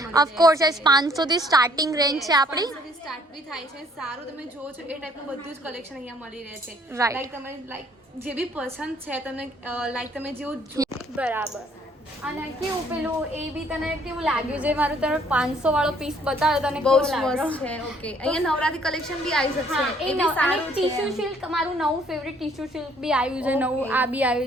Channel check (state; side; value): normal; both; correlation 0.62